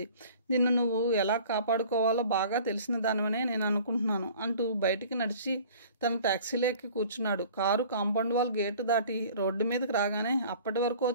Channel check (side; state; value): both; inverted; correlation -0.48